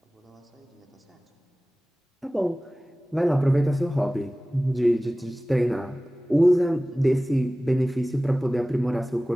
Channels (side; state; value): both; normal; correlation 0.98